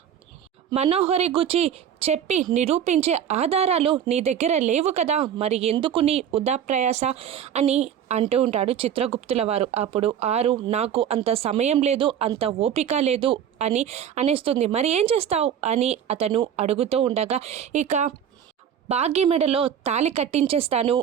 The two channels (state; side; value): quieter; left; 9.0 dB